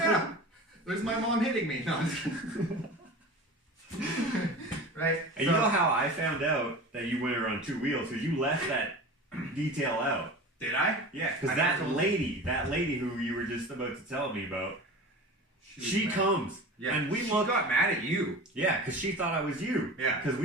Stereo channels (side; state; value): both; normal; correlation 0.34